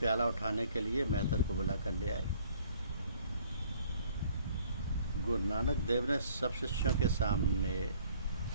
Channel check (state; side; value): inverted; both; correlation -0.58